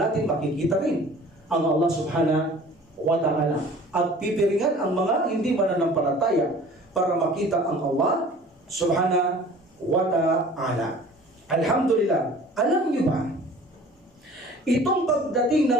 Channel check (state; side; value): normal; both; correlation 0.47